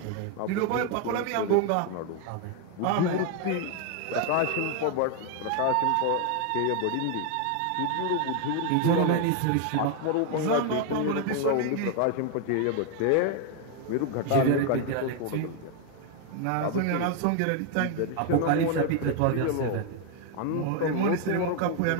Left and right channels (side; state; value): both; different; correlation 0.01